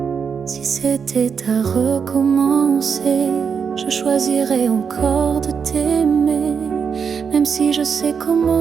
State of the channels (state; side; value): quieter; left; 6.4 dB